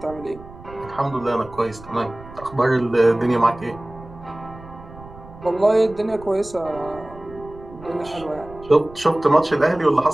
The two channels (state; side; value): noise; right; rumble, 18 dB below the sound